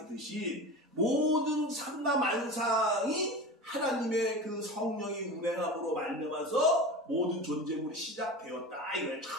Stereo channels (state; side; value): normal; both; correlation 0.30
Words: 모든 삼라만상이 하나님의 그 성령이 운행함으로 말미암아서 모든 존재물이 시작되었다 이거예요.